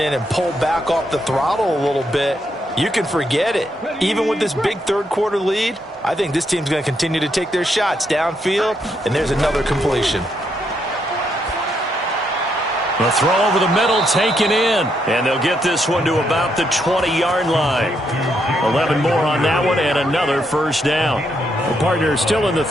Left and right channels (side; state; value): both; normal; correlation 0.77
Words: and pull back off the throttle a little bit, you can forget it. Even with this big third-quarter lead, I think this team's going to continue to take their shots downfield, and there's another completion. The throw over the middle taken in, and they'll get this one to about the 20-yard line. 11 more on that one and another first down. The partner is still in the